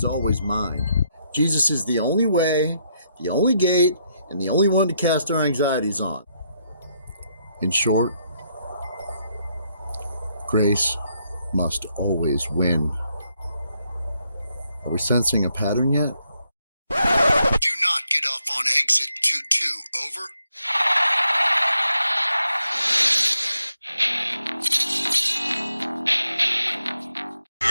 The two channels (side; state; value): both; inverted; correlation -0.77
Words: always mine. Jesus is the only way, the only gate, and the only one to cast our anxieties on. In short, grace must always win. Are we sensing a pattern yet? Do not get off on exit 22, over.